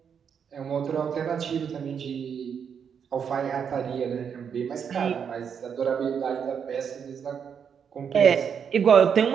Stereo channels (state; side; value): quieter; left; 7.3 dB